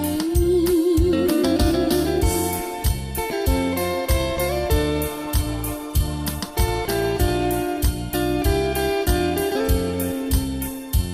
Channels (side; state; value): both; identical; correlation 1.00